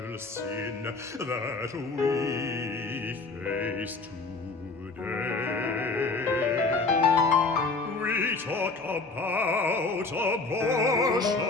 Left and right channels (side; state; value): right; quieter; 3.8 dB